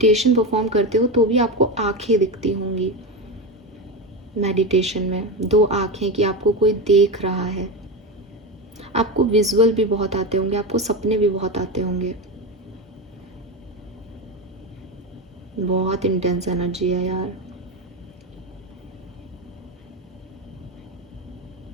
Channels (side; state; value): both; normal; correlation 0.17